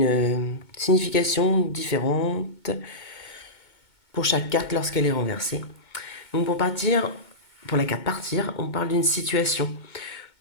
signification différente pour chaque carte lorsqu'elle est renversée. Donc pour la carte partir, on parle d'une situation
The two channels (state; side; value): late; right; 2.2 ms